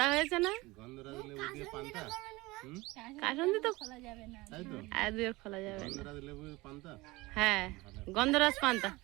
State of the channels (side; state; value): left; quieter; 21.6 dB